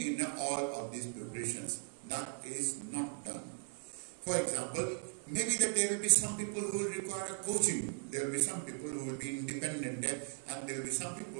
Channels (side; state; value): left; silent; 52 dB below the other